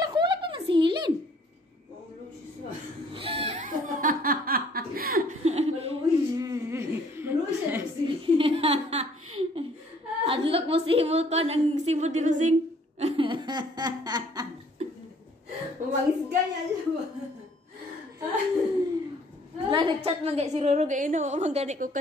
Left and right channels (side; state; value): both; normal; correlation 0.60